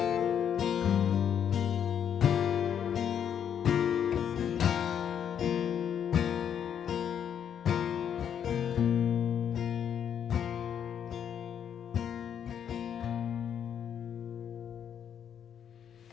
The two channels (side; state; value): right; quieter; 8.7 dB